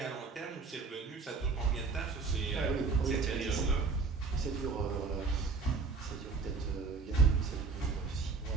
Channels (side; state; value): left; quieter; 4.6 dB